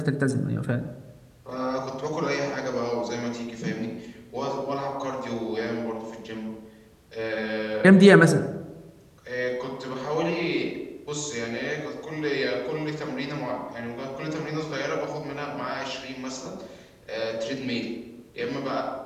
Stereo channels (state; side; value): identical; both; correlation 1.00